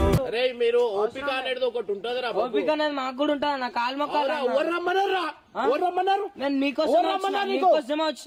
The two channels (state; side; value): identical; both; correlation 1.00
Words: అరే మీరు ఓపిక అనేది ఒకటి ఉంటదిరా. ఓపిక అనేది మాకు కూడా ఉంటుంది. నా కాలు మొక్కలు నేను మీకోసమే